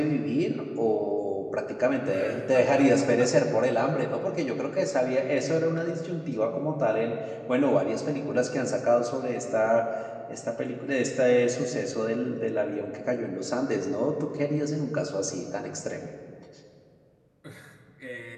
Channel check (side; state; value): both; identical; correlation 1.00